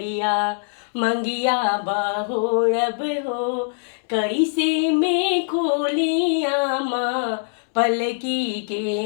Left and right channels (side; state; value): right; silent; digital silence